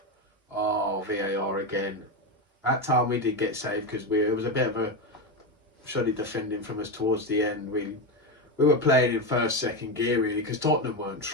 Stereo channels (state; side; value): normal; both; correlation 0.14